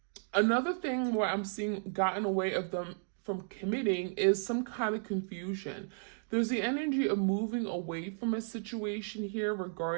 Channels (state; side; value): silent; left; digital silence